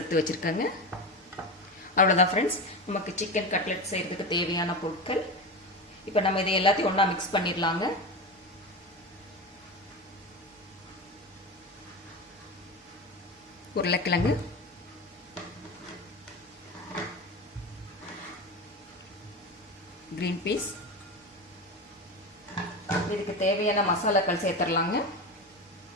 வச்சுருக்கேங்க. அவ்வளோதான் ஃப்ரெண்ட்ஸ், நமக்கு சிக்கன் கட்லெட் செய்கிறதுக்கு தேவையான பொருட்கள். இப்போ நம்ம இதை எல்லாத்தையும் ஒன்றா மிக்ஸ் பண்ணிடலாங்க. உருளைக்கிழங்கு, கிரீன் பீஸ், இதுக்கு தேவையான மசாலாக்கள் சேர்த்துடலாங்க.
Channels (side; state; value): both; normal; correlation 0.22